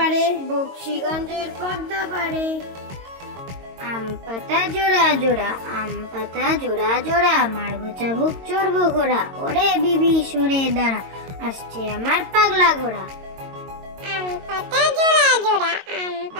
বক্সিগঞ্জের পদ্মা পারে। আম পাতা জোড়া জোড়া, আম পাতা জোড়া জোড়া, মারবো চাবুক চড়বো ঘোড়া, ওরে বিবি সরে দাঁড়া, আসছে আমার পাগলা ঘোড়া। আম পাতা জোড়া জোড়া, আম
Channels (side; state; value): left; late; 22 ms